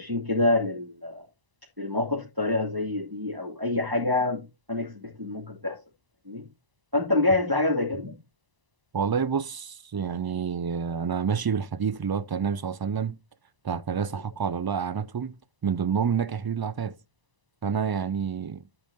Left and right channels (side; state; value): left; late; 1.0 ms